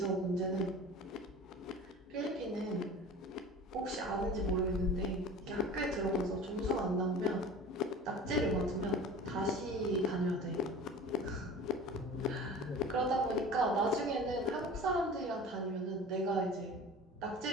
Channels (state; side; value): normal; both; correlation 0.39